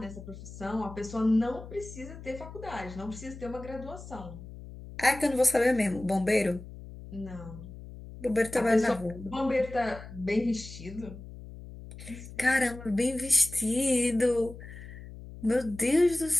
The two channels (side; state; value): left; noise; hum, 14 dB below the sound